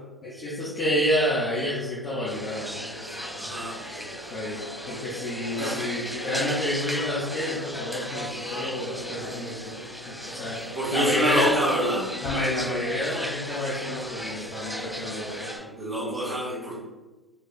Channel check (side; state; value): both; normal; correlation 0.45